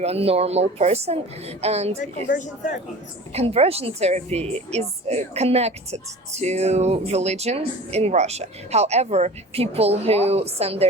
a normal person. And Like conversion therapy. conversion therapy is connected to religion in Russia. However, people who send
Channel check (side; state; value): both; normal; correlation 0.39